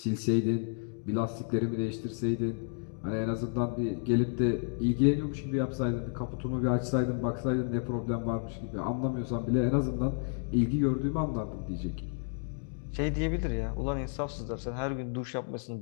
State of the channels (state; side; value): silent; right; 57 dB below the other